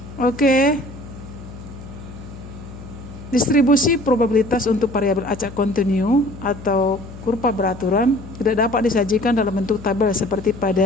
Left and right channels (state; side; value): noise; left; hum, 15 dB below the sound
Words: Oke. Distribusi probabilitas untuk variabel acak kontinu atau kurva beraturan tidak dapat disajikan dalam bentuk tabel seperti